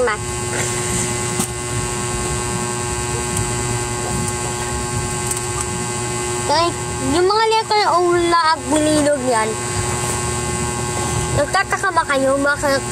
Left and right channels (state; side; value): identical; both; correlation 1.00